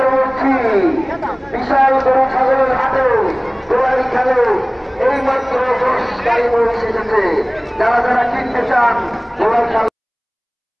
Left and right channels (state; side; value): identical; both; correlation 1.00